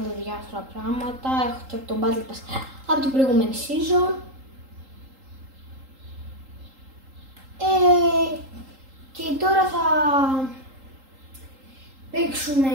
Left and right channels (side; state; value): left; late; 3.8 ms